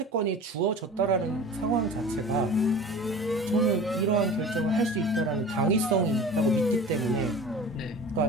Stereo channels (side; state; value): both; normal; correlation 0.38